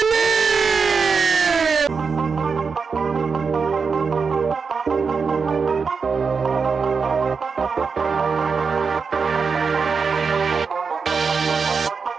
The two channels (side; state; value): left; quieter; 5.3 dB